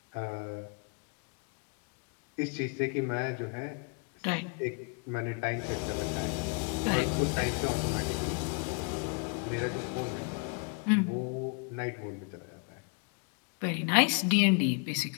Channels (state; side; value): quieter; right; 35.7 dB